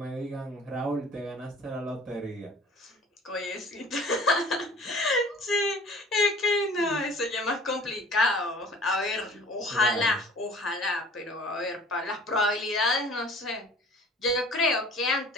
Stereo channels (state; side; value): normal; both; correlation 0.48